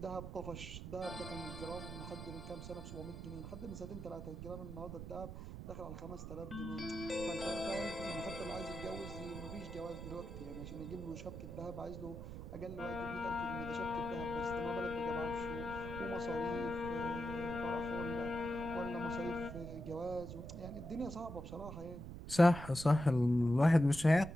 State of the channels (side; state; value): right; noise; rumble, 9 dB below the sound